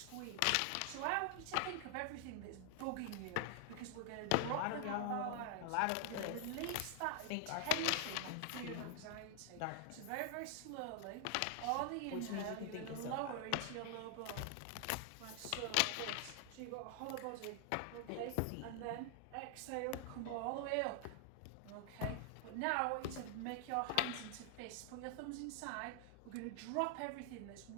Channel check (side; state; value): both; different; correlation 0.00